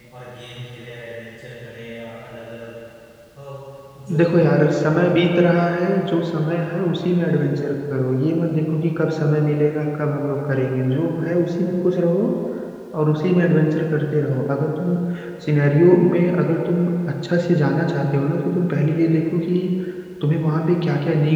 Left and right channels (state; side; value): identical; both; correlation 1.00